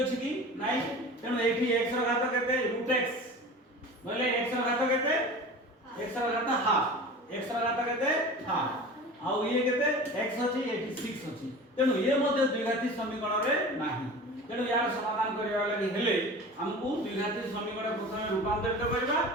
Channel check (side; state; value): both; normal; correlation 0.36